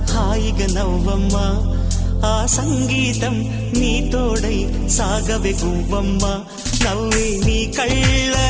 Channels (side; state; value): both; identical; correlation 1.00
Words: హాయిగా నవ్వమ్మా ఆ సంగీతం నీ తోడై సాగవే గువ్వమ్మ నవ్వే నీ